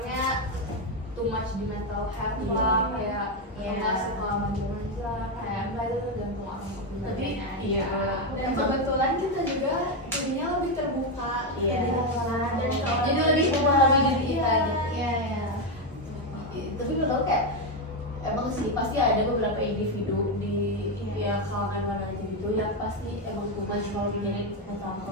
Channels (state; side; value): normal; both; correlation 0.07